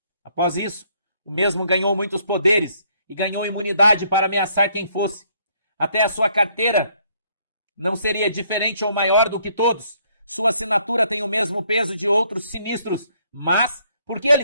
Após isso, o mesmo ganhou muitos poderes e ganhou imunidade para ameaçar quem fosse. Até a sua carteira não seria diferente ou maior do que todos. Sua assinatura tem o mesmo peso de outros sinistros, mas por que ele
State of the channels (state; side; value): inverted; both; correlation -0.68